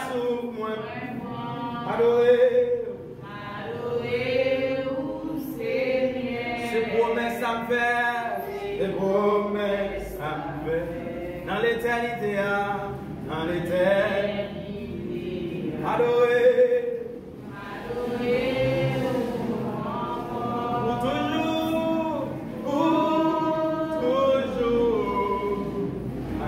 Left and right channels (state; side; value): identical; both; correlation 1.00